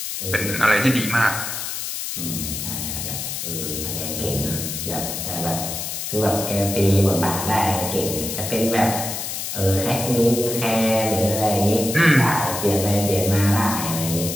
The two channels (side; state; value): left; noise; hiss, 5 dB below the sound